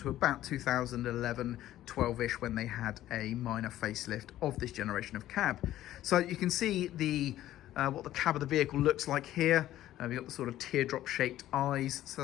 about 2011, 12-ish, when they had a minor facelift of this generation of cab. So you can see the what the cab of the vehicle looks like here. We've got the sort of teardrop shaped eyes,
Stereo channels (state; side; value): quieter; right; 13.6 dB